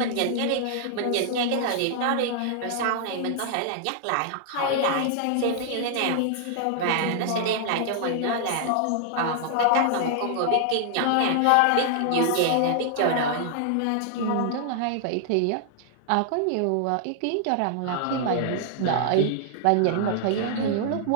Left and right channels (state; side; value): different; both; correlation -0.01